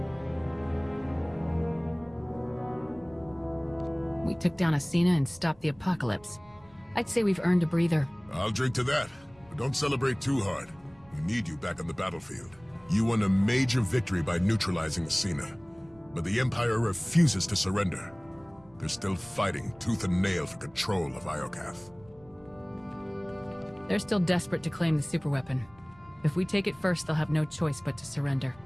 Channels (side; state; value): right; noise; rumble, 27 dB below the sound